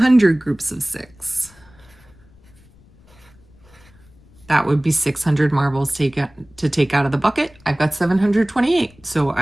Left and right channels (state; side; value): noise; left; rumble, 27 dB below the sound